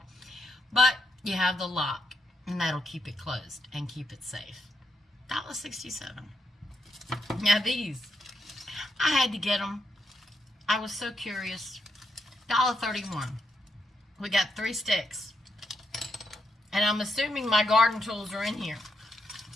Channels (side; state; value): both; normal; correlation 0.81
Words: But you have the lock. And that'll keep it closed and keep it safe. $1.67. Now these, I had to get them. I was so curious. $1.31. We got 3 sticks. And I'm assuming my garden tools are in here.